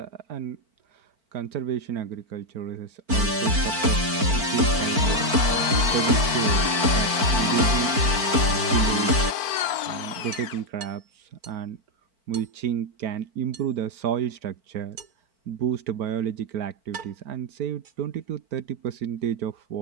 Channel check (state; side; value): late; left; 4.5 ms